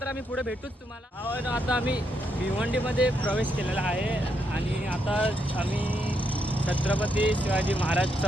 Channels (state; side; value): normal; both; correlation 0.79